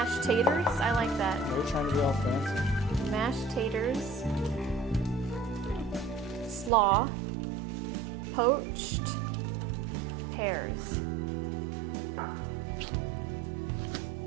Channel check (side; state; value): left; drops out; at 6.7 s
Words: taters? I like that. They're trying to be all fancy. Mashed taters. Slaw. Poached pears.